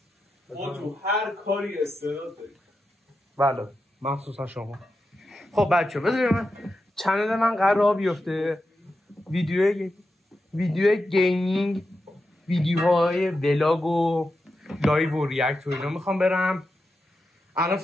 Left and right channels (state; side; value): normal; both; correlation 0.89